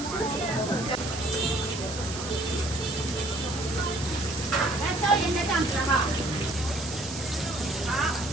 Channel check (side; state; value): right; noise; hiss, 9 dB below the sound